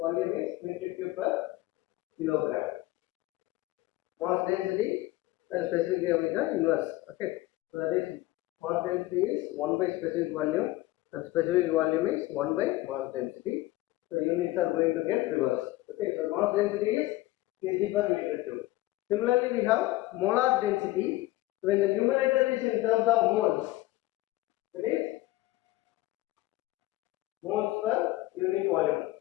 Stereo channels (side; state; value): right; quieter; 18.2 dB